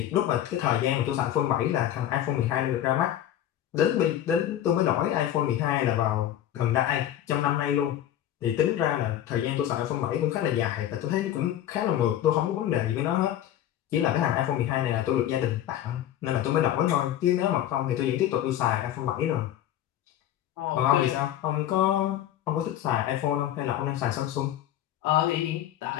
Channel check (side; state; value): right; quieter; 11.8 dB